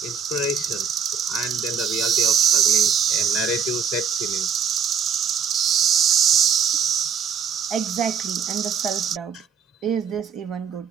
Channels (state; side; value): quieter; left; 6.9 dB